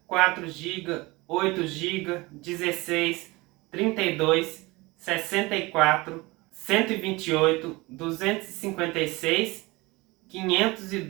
4 GB, 8 GB, 16, 32, 64, 128, 256,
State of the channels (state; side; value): quieter; left; 22.8 dB